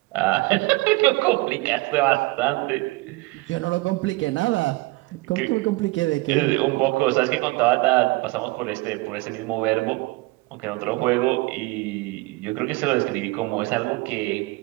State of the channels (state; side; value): quieter; left; 23.1 dB